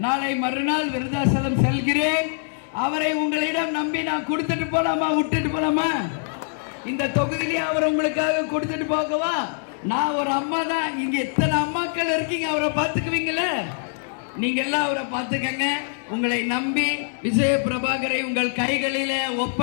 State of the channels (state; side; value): silent; right; digital silence